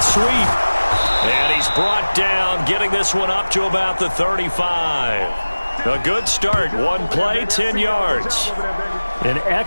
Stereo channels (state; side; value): inverted; both; correlation -1.00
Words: And he's brought down, getting this one up to about the 35. A good start. One play, 10 yards. An